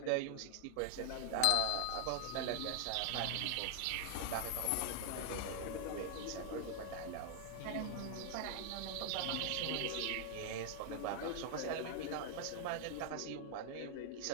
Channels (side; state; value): both; different; correlation 0.00